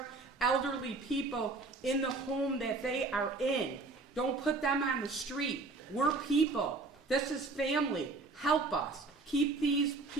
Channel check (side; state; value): left; quieter; 3.6 dB